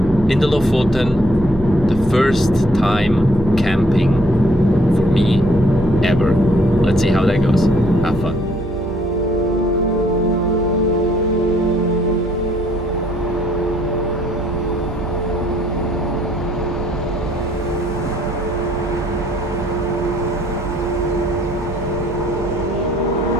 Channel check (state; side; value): noise; right; hum, 10 dB below the sound